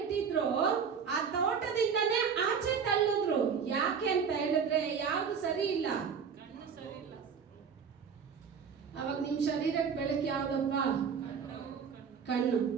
ಆ ತೋಟದಿಂದನೇ ಆಚೆ ತಳ್ಳಿದ್ರು. ಯಾಕೆ ಅಂತ ಹೇಳಿದ್ರೆ ಯಾವ್ದು ಸರಿ ಇಲ್ಲ, ಅವಾಗ ನಿಮ್ ಶರೀರಕ್ಕೆ ಬೆಳಕು ಯಾವ್ದಪ್ಪ? ಕಣ್ಣು.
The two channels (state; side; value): quieter; left; 6.5 dB